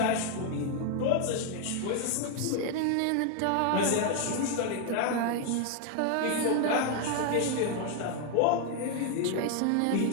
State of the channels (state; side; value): different; both; correlation 0.00